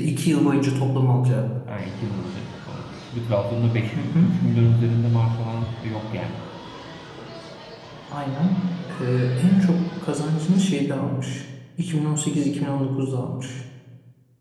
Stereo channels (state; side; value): identical; both; correlation 1.00